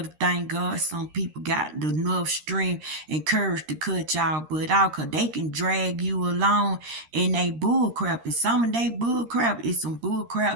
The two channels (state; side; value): late; left; 13 ms